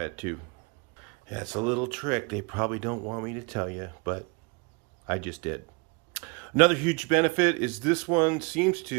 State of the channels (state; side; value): quieter; left; 30.3 dB